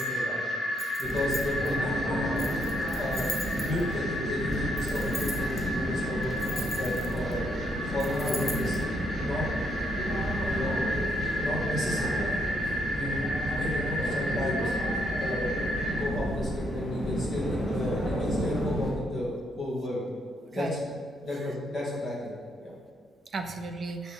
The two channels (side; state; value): both; normal; correlation 0.74